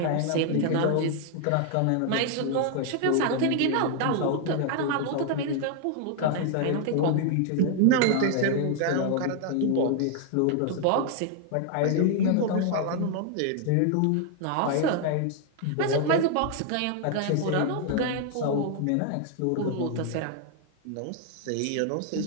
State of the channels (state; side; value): different; both; correlation 0.00